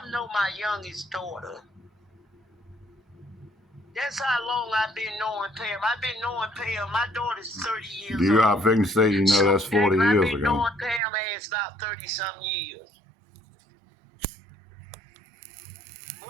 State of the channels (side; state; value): left; drops out; at 11.0 s